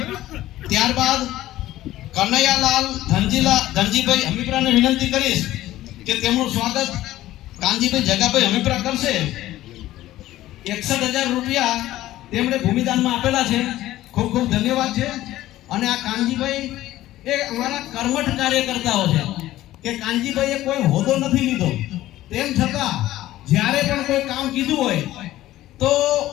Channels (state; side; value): quieter; right; 15.1 dB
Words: ત્યારબાદ કનૈયાલાલ ધનજીભાઈ હમીપરાને વિનંતી કરીશ કે તેમનું સ્વાગત કાનજીભાઈ જગાભાઈ હમીપરા કરશે. 61,000 રૂપિયા તેમણે ભૂમિદાનમાં આપેલા છે. ખૂબ ખૂબ ધન્યવાદ છે. અને આ કાનજીભાઈ એ અમારા કર્મઠ કાર્યકર્તાઓ છે કે કાનજીભાઈએ કોઈ હોદ્દો નથી લીધો, તેમ છતાં જ્યારે પણ કોઈ કામ કીધું હોય તો